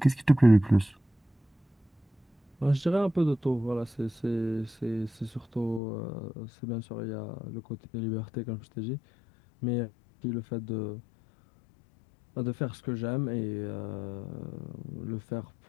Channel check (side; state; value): right; drops out; at 5.8 s